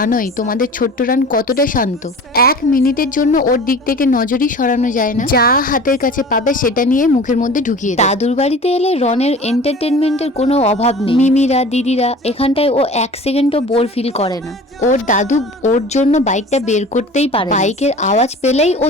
তোমাদের ছোট্ট রান কতটা শান্ত, 1 মিনিটের জন্য ওর দিক থেকে নজরই সরানো যায় না। যা হাতের কাছে পাবে সেটা নিয়ে মুখের মধ্যে ঢুকিয়ে দেয়। দাদুর বাড়িতে এলে রনের এন্টারটেনমেন্টের কোনো অভাব নেই। মিমিরা দিদিরা এখানটায় ও 1 সেকেন্ডও বোর ফিল করে না। ওর দাদু ওর জন্য বাইকটা বের করতেই পারে। বাইকের আওয়াজ পেলেই ও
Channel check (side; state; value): both; normal; correlation 0.41